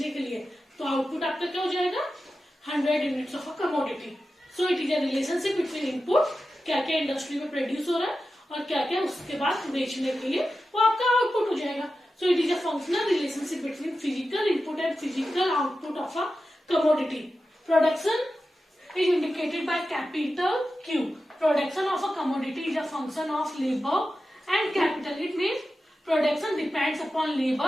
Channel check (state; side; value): normal; both; correlation 0.92